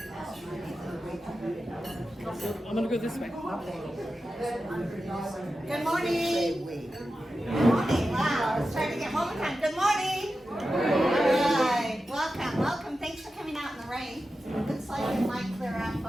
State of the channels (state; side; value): normal; both; correlation 0.92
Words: going to go this way. Good morning. Good morning. Wow, it's trying to get home time. Good morning. All right. Welcome. Thanks for coming out in the rain. Looks like it might clear out